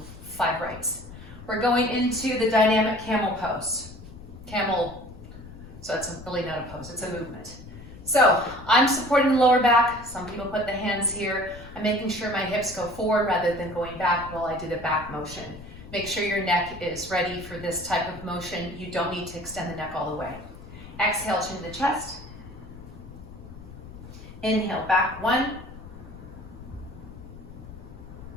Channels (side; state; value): left; noise; rumble, 15 dB below the sound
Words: 5 rites. We're going into the dynamic camel pose. Camel, so it's really not a pose, it's a movement. So I'm supporting the lower back. Some people put the hands here. I'm making sure my hips go forward rather than going back while I do the back motion. Make sure your neck is ready for this type of motion. You don't need to extend the neck all the way. Exhale, chin to the chest. Inhale, back. 1.